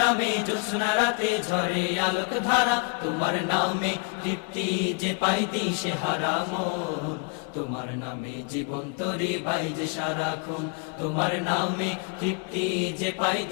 নামে জোছনা রাতে ঝরে আলোক ধারা। তোমার নামে তৃপ্তি যে পাই দিশে হারা মন, তোমার নামে জীবন তরি বাইজে সারাক্ষণ। তোমার নামে তৃপ্তি যে পাই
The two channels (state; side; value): quieter; right; 33.8 dB